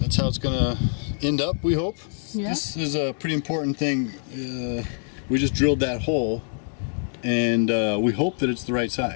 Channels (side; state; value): right; silent; 62 dB below the other